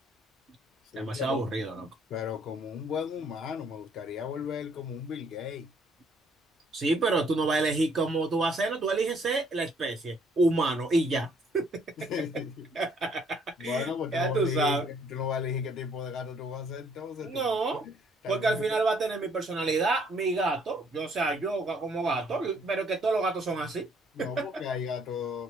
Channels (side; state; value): both; normal; correlation 0.65